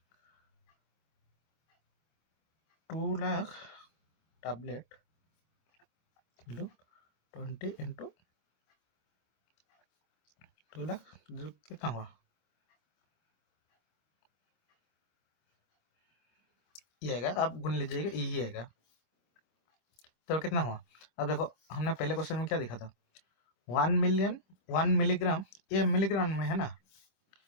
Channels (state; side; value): late; right; 26 ms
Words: 2 lakh tablet 20 into 2 lakh कितना हुआ? ये आएगा, आप गुन लीजिएगा, यही आएगा। तो कितना हुआ? अब देखो हमने पहले क्वेश्चन में क्या देखा था, 1 मिलिग्राम, ये मिलीग्राम में है ना।